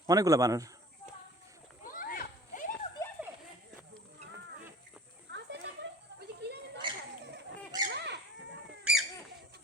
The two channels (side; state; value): both; normal; correlation 0.46